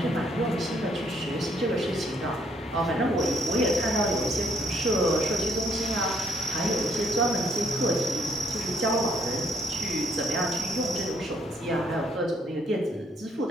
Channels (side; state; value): both; normal; correlation 0.68